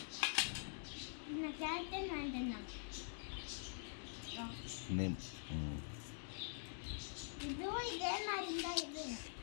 இந்த கேரக்டர் வாங்கிட்டேன். இதுவும் இதே மாதிரி தான். இது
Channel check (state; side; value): silent; right; digital silence